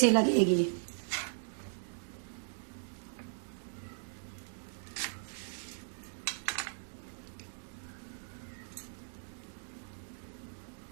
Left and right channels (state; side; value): silent; left; digital silence